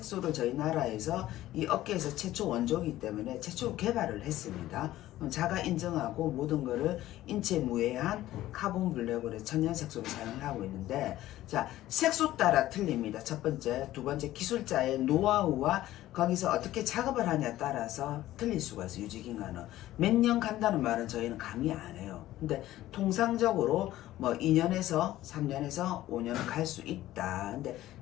저희 나라에서 이 업계에서 최초 원조이기 때문에 최초 개발을 했습니다. 자가 인정하고 모든 거를 인체 무해한 카본 블랙으로 천연 색소를 사용을 하고 있는데, 자, 색소 따라 틀립니다. 첫 번째, 두 번째, 기술자의 노하우와 거기서 어떻게 작업을 하냐에 따라서 틀릴 수가 있어요. 유지기간은 몇 년 간다는 말은 저희는 감히 안 해요. 근데 통상적으로 뭐 2년에서 3년에서 5년은 갈 수 있다. 근데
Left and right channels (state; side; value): quieter; right; 14.8 dB